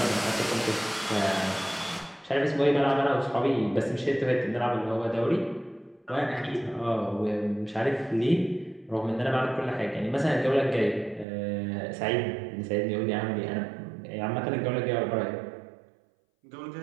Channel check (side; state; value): left; drops out; at 11.2 s